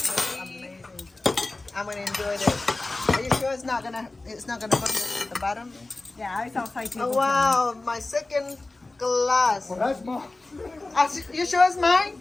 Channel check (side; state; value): right; quieter; 3.1 dB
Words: amazing. I'm gonna enjoy this. Are you sure it's not gonna burn at the bottom? Yeah, it's outside table. Oh wow, my second glass. Well, that's mom. You sure it's mine?